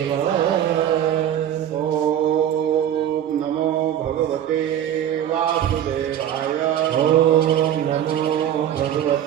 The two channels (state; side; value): quieter; left; 10.5 dB